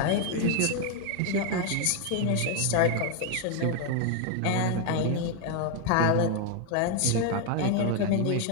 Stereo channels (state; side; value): different; both; correlation 0.01